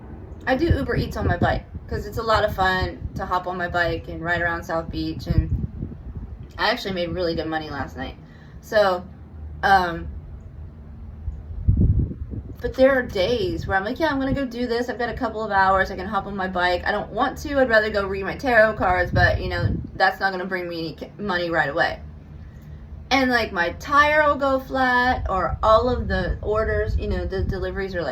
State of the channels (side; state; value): both; identical; correlation 1.00